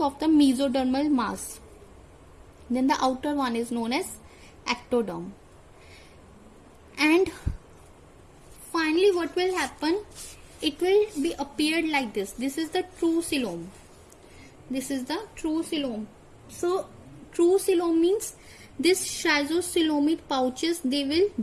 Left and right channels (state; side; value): identical; both; correlation 1.00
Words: of the mesodermal mass. Then the outer one is known as ectoderm. And finally what will happen, it will be appeared like this. This is the true coelom. This is the true coelom. So true coelom means this schizocoelomic pouches, they will